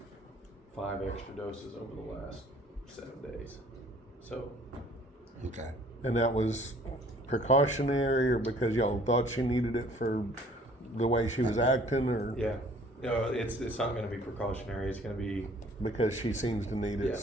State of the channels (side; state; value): both; normal; correlation 0.55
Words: 5 extra doses over the last 7 days. So Okay. And that was precautionary, or because y'all thought she needed it for the way she was acting, or yeah, it's not going to be precautionary. It's going to be because she seems to need it, Yeah.